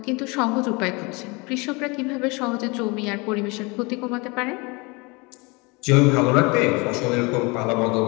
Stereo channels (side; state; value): right; quieter; 27.4 dB